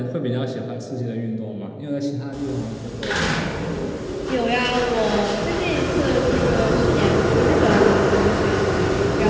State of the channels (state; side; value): identical; both; correlation 1.00